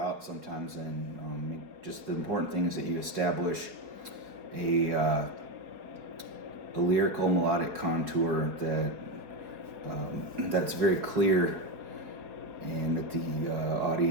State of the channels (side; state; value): left; late; 4.8 ms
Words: sometimes, and just the important thing is that you establish a lyrical melodic contour that's very clear, and that the